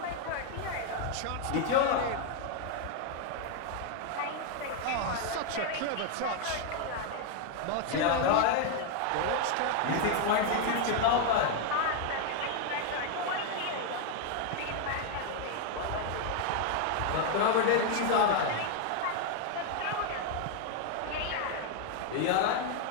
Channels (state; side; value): different; both; correlation 0.01